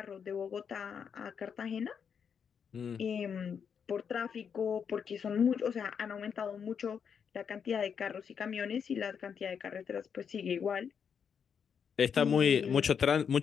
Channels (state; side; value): quieter; right; 7.1 dB